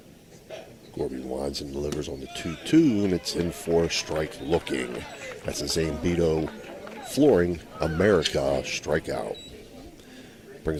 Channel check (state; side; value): identical; both; correlation 1.00